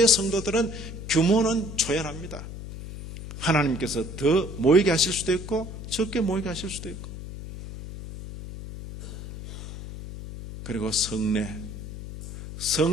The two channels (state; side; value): noise; left; hum, 10 dB below the sound